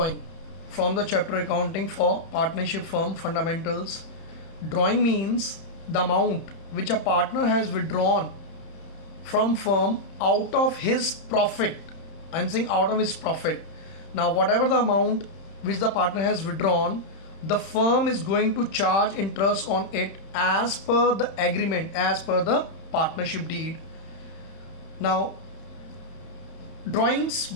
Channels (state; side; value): late; right; 31 ms